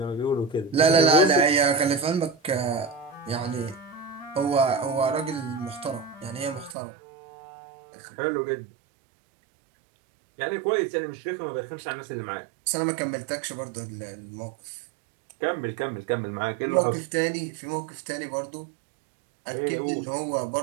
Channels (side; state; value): left; drops out; at 6.8 s